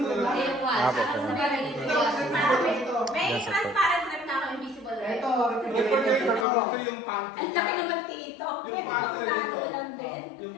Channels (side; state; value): right; drops out; at 6.5 s